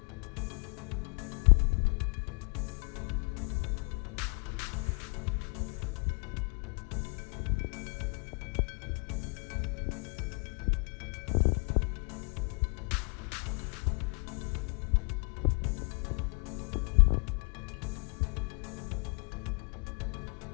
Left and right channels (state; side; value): quieter; right; 36.3 dB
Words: I'm going to be seasoning my chicken now.